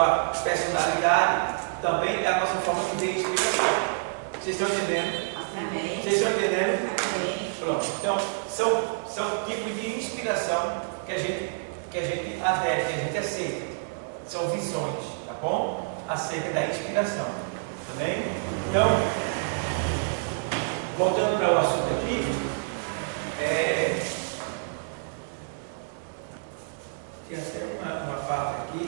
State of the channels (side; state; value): left; silent; digital silence